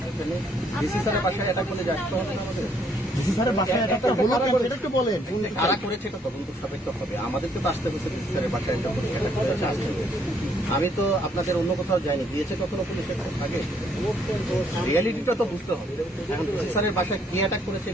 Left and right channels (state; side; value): normal; both; correlation 0.68